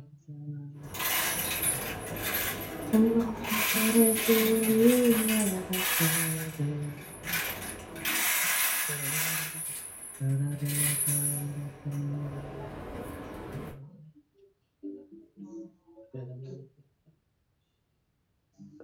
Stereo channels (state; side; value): identical; both; correlation 1.00